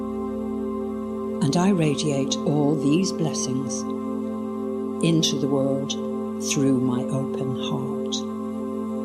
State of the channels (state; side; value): identical; both; correlation 1.00